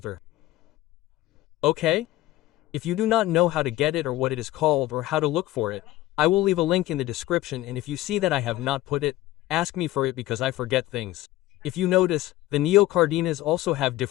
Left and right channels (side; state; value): right; quieter; 16.0 dB